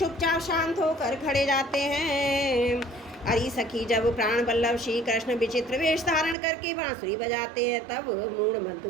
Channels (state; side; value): drops out; left; at 6.4 s